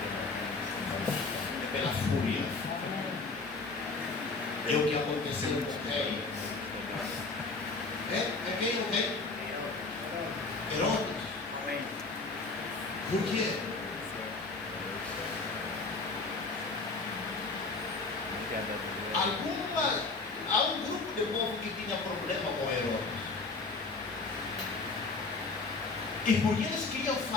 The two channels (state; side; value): quieter; right; 3.8 dB